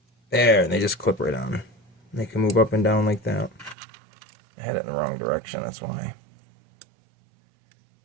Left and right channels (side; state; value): left; drops out; at 3.8 s